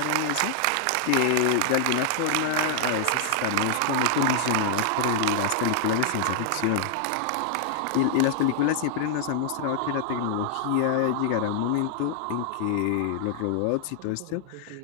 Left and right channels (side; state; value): both; different; correlation -0.01